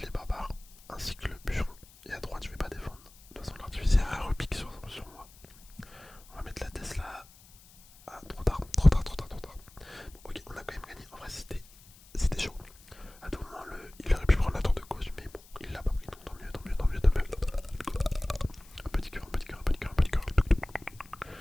les barbares ainsi que le bûcheron. Et à droite, je vais pas défendre. De toute façon, l'artificière elle repique sur moi. On va mettre la Tesla. Ah, trop tard. Bon, ok, on a quand même gagné. En vrai, c'était chaud. À tout moment, il aurait pu prendre la tour de gauche, mais bon, il l'a pas pris. Donc tant mieux. Un petit cœur.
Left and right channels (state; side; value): noise; left; hiss, 24 dB below the sound